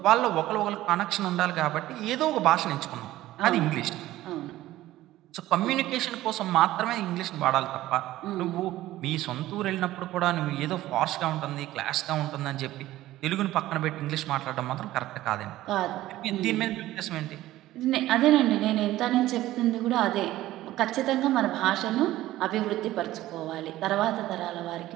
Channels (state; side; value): quieter; left; 15.5 dB